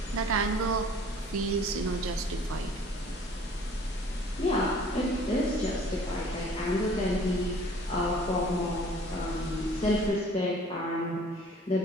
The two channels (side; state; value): both; normal; correlation 0.51